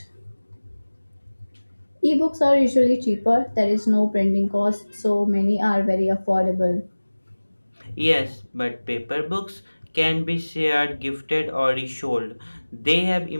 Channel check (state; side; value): inverted; both; correlation -1.00